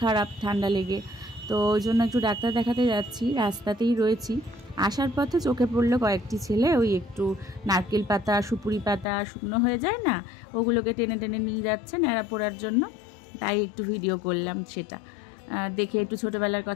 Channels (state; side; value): drops out; right; at 9.1 s